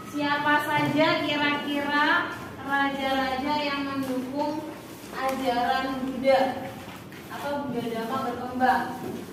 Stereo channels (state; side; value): identical; both; correlation 1.00